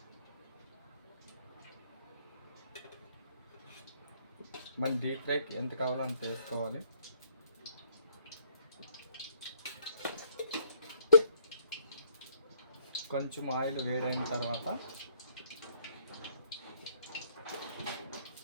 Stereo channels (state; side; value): inverted; both; correlation -0.65